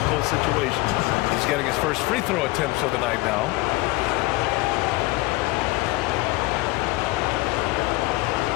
situations. He's getting his first free throw attempts of the night now.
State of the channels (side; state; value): right; quieter; 21.1 dB